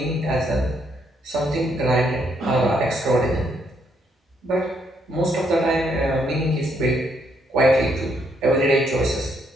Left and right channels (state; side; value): normal; both; correlation 0.73